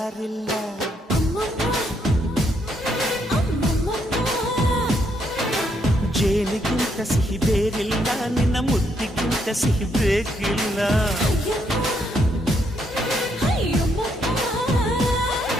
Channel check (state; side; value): normal; both; correlation 0.75